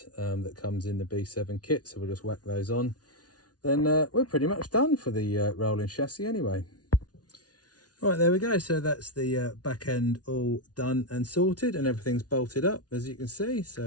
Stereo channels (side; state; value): right; late; 0.69 ms